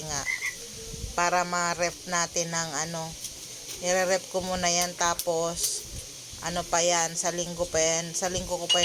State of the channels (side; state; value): both; identical; correlation 1.00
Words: nga para ma-rep natin ng nire-rep ko muna yan. Tapos pa yan, sa linggo ko pa